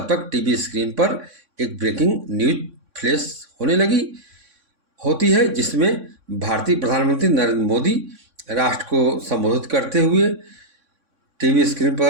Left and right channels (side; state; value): left; late; 3.6 ms